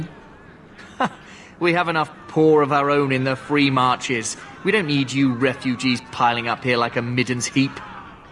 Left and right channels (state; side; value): identical; both; correlation 1.00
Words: We have enough poor of our own in the free marches. We don't need you refugees piling up here like a middens heap.